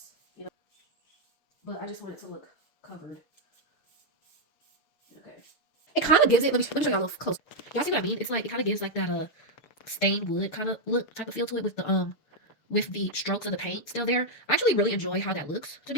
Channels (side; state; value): right; late; 6.8 ms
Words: you know. But I just want it to look covered. Okay. It kind of gives it. Let me show y'all a little close. Y'all see what I mean? It's like it kind of gives like that stained wood kind of look type of feel to it with the strokes of the paint still there. I actually really enjoy how that looks, to